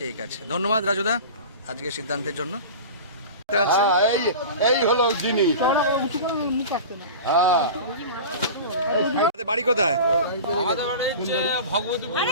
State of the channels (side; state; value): both; inverted; correlation -0.33